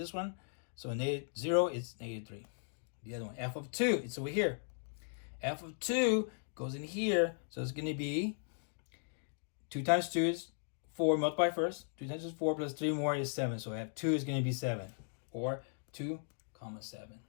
one. So at 0, it's -3. The other one, f of 2, it's over here. F of 2 goes in here. So it's going to be 2 times 2 is 4, multiply first. 2 times 2 is 4 plus 3 more is 7. So F2 is going to be 7. Or 2, 7.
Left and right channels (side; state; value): right; silent; digital silence